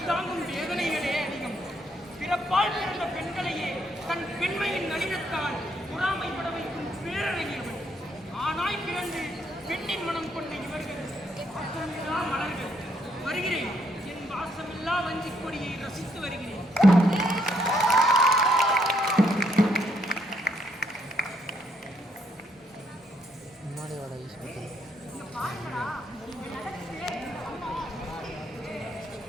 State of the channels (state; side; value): normal; both; correlation 0.73